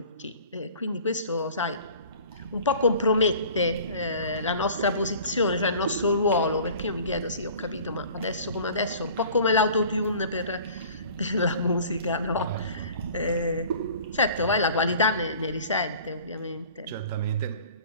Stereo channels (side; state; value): both; inverted; correlation -0.46